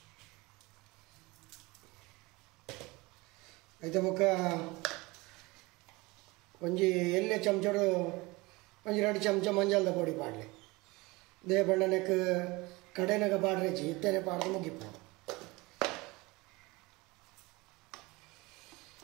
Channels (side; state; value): left; quieter; 23.3 dB